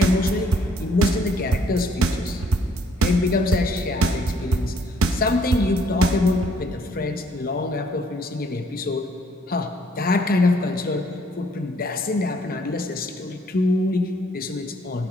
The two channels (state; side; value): normal; both; correlation 0.65